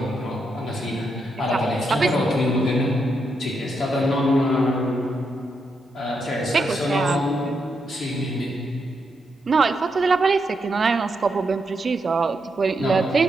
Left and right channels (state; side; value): normal; both; correlation 0.82